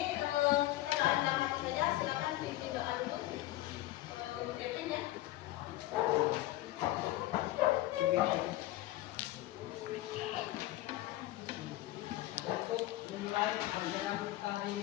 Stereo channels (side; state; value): right; quieter; 16.4 dB